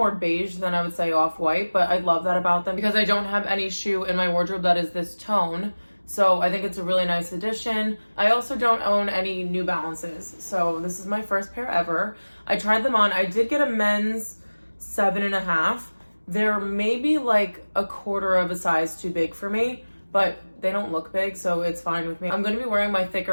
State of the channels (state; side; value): inverted; both; correlation -1.00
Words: beige than I would say off-white, but I love that about them because I don't have any shoe in my wardrobe that is this tone. So I think it's a really nice addition. I also don't own any New Balances. So this is my first pair ever. I tried them on. I did get a men's 7.5. They're maybe like a quarter of a size too big for me, but they don't look big, so it's fine with me. I'm going to be wearing my